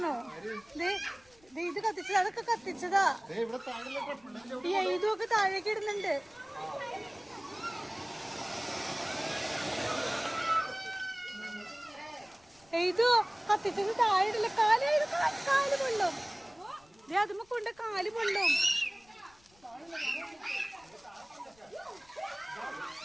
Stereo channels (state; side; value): noise; left; rumble, 30 dB below the sound